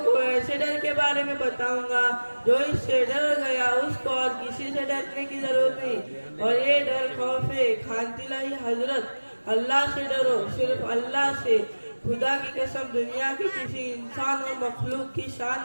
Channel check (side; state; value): both; inverted; correlation -1.00